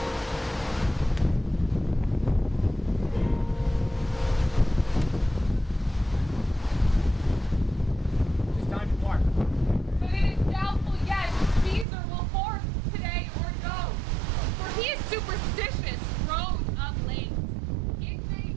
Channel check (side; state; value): left; drops out; at 11.9 s